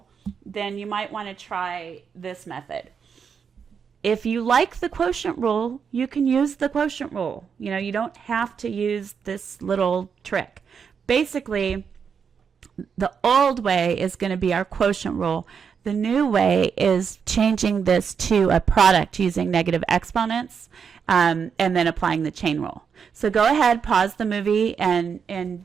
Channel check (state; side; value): quieter; left; 6.6 dB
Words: then you might want to try this method. If you like the quotient rule, you can use the quotient rule. You don't have to use this little trick. Basically, the old way is going to be our quotient rule. The new way is changing this to a product using negative exponents and then applying the chain rule. So go ahead, pause the movie